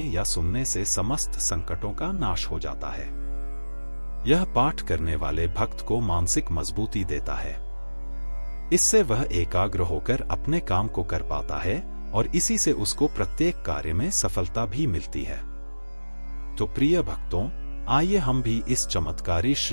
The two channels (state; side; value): inverted; both; correlation -1.00